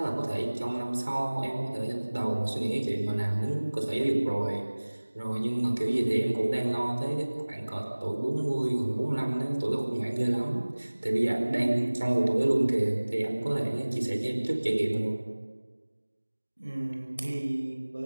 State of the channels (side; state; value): both; inverted; correlation -1.00